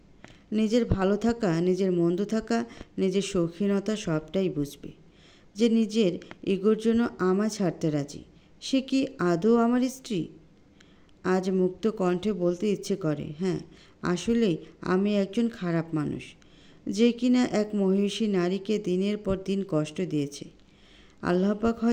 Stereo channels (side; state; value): both; identical; correlation 1.00